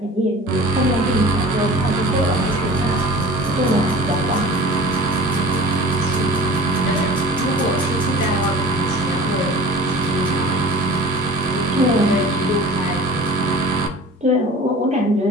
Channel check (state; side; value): normal; both; correlation 0.41